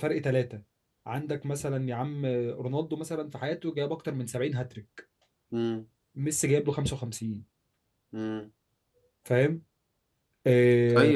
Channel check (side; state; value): both; identical; correlation 1.00